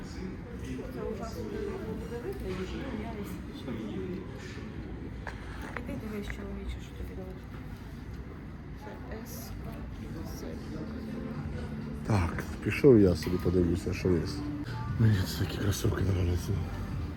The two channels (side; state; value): both; identical; correlation 1.00